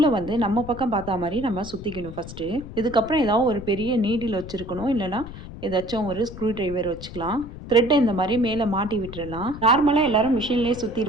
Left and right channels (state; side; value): noise; left; rumble, 13 dB below the sound